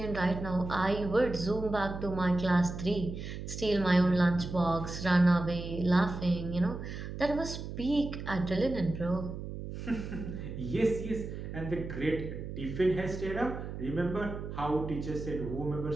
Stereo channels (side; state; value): right; noise; hum, 8 dB below the sound